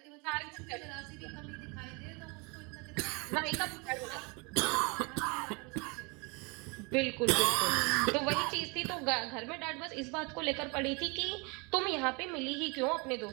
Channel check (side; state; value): left; quieter; 30.3 dB